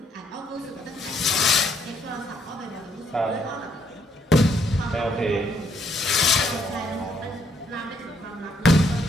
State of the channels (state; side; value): normal; both; correlation 0.70